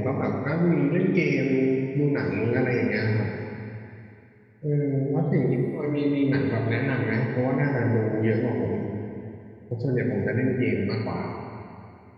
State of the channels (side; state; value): both; identical; correlation 1.00